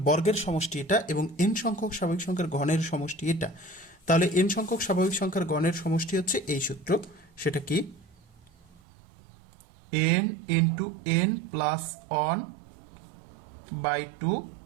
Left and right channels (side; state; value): left; drops out; at 8.8 s